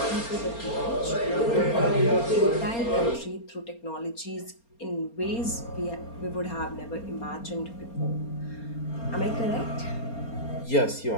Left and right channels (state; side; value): late; right; 4.3 ms